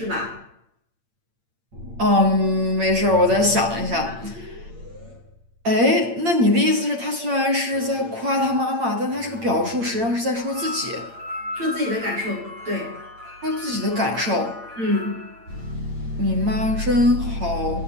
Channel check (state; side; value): late; left; 8.8 ms